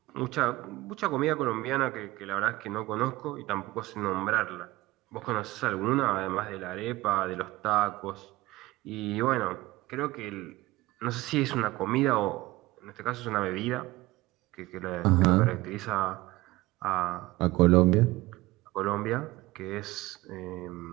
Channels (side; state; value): left; quieter; 19.1 dB